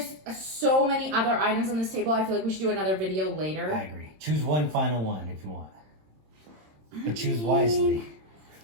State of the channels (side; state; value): left; late; 26 ms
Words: so many other items on this table. I feel like we should do another video later. I agree. Choose one final one if you want. But choose wisely.